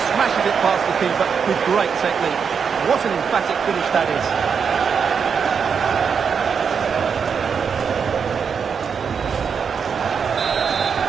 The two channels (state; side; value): quieter; left; 6.4 dB